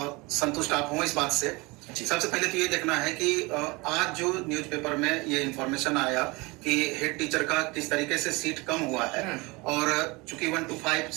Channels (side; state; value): left; quieter; 24.9 dB